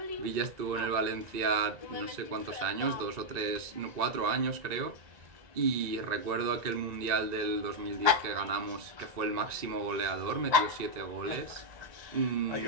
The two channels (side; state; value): left; late; 1.9 ms